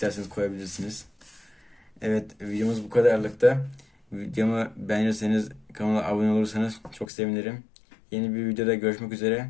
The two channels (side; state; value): right; drops out; at 7.1 s